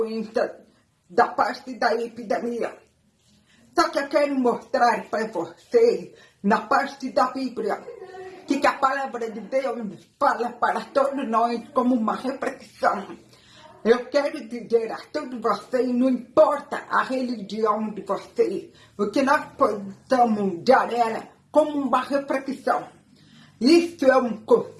da parte da epidemia. Só que eu quero mostrar para vocês, na parte da Bíblia, que a palavra de Deus fala para todos nós como uma reflexão. Eu quero dizer a todos vocês, não importa a religião de vocês, o que nós possamos dar ela como uma reflexão. Isso é um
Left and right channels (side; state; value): both; identical; correlation 1.00